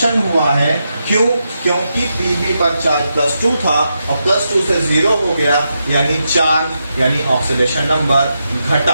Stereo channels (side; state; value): both; inverted; correlation -0.86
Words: हुआ है। क्यों? क्योंकि पीबी पर चार्ज +2 था और +2 से 0 हो गया यानी चार्ज यानी ऑक्सीडेशन नंबर